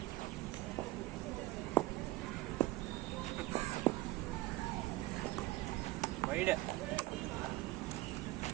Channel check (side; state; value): left; quieter; 18.7 dB